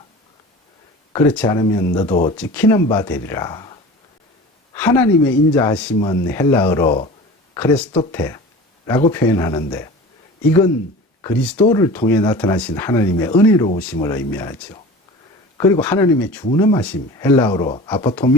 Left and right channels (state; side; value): normal; both; correlation 0.37